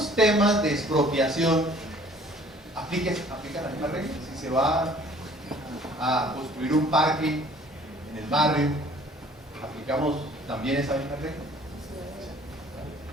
temas de expropiación aplica la misma regla? Si se va a construir un parque en el barrio, ¿aplicamos también esa misma regla?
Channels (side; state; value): both; normal; correlation 0.54